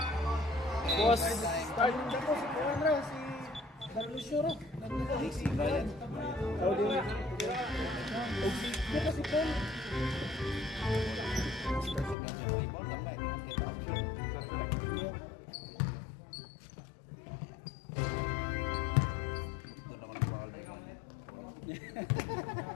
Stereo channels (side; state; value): right; drops out; at 12.2 s